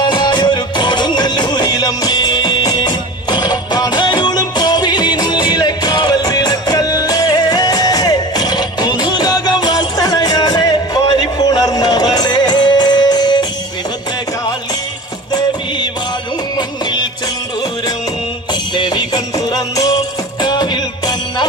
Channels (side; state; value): both; normal; correlation 0.35